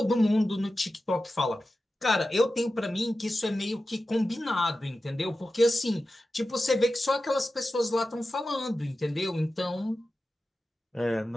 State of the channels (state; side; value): normal; both; correlation 0.93